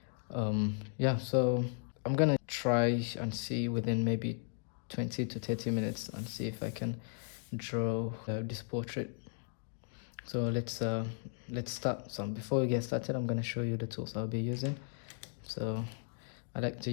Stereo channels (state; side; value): silent; right; 54 dB below the other